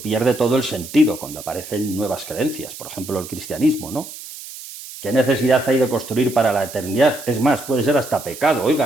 pierde todo el sentido cuando aparecen nuevas creencias. Por ejemplo, el cristianismo, ¿no? ¿Qué necesidad hay de construir para la eternidad? Es más, puede ser hasta pecado.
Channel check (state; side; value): noise; right; hiss, 13 dB below the sound